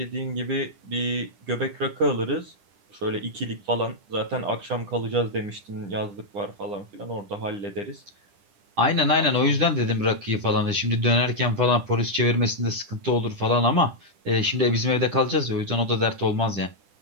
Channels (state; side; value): late; left; 10 ms